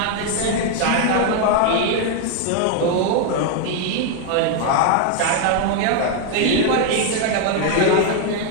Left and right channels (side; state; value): both; different; correlation 0.00